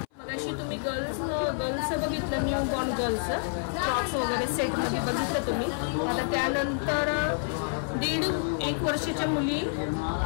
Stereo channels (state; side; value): silent; right; 59 dB below the other